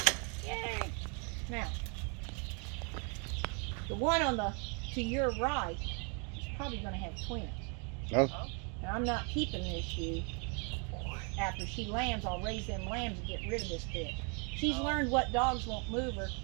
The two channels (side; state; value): left; quieter; 36.8 dB